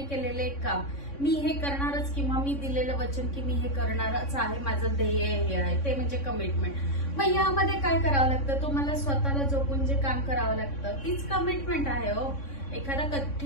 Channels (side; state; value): right; late; 3.6 ms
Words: केलेले एक काम. मी हे करणारच किंवा मी दिलेलं वचन की मी हे करणारच आहे, माझं ध्येय हे आहे, ते म्हणजे कमिटमेंट. मग यामध्ये काय करावं लागतं? तुम्हाला स्वतःला जोपून जे काम करावं लागतं तीच कमिटमेंट आहे हो. एखादा